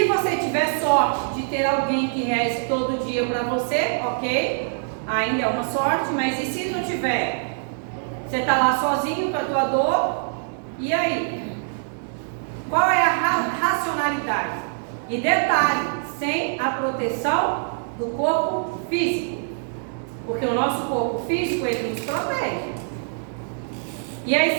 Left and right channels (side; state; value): left; silent; digital silence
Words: você tiver sorte de ter alguém que reze todo dia para você, ok? Ainda é uma sorte, mas e se não tiver? Você está lá sozinho com a tua dor, e aí? Qual é a racionalidade? E detalhe, sem a proteção do corpo físico. Porque o nosso corpo físico, ele nos protege. E aí,